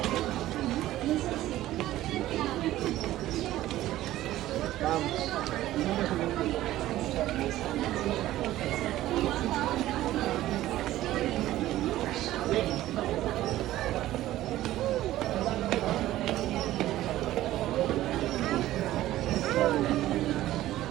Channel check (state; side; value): quieter; left; 14.8 dB